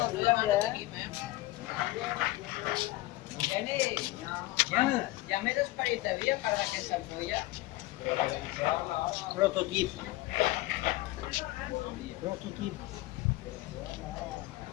¿verdad? Ya me desparece para aquesta ampolla. Prototip. Prototip.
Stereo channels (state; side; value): quieter; right; 18.6 dB